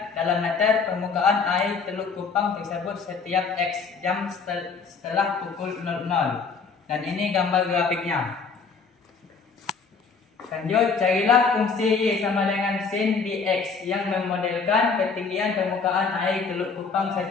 dalam meter permukaan air Teluk Kupang tersebut setiap X jam setelah pukul 00. Dan ini gambar grafiknya. Lanjut, carilah fungsi Y sama dengan sin dx yang memodelkan ketinggian permukaan air Teluk Kupang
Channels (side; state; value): right; quieter; 5.0 dB